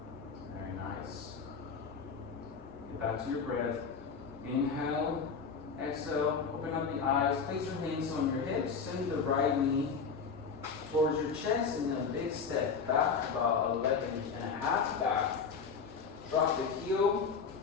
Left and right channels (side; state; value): right; quieter; 5.6 dB